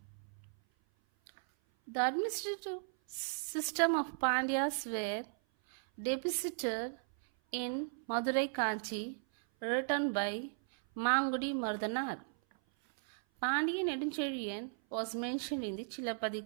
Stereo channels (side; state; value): left; silent; 54 dB below the other